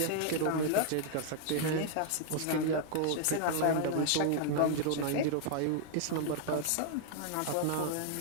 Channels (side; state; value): both; different; correlation 0.00